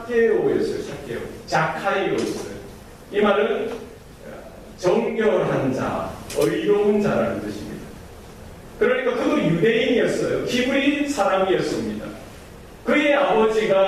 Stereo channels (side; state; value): both; identical; correlation 1.00